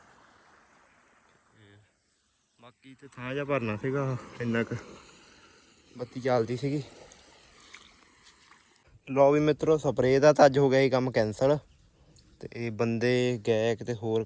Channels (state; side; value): identical; both; correlation 1.00